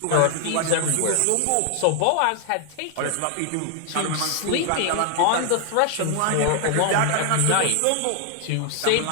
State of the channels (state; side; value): different; both; correlation 0.00